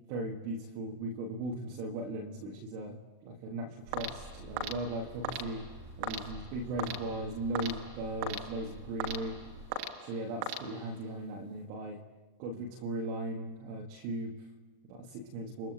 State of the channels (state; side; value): late; left; 40 ms